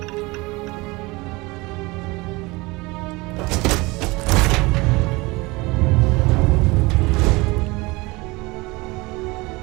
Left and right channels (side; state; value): left; quieter; 23.5 dB